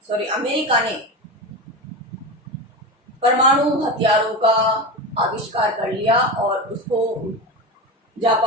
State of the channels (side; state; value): both; normal; correlation 0.22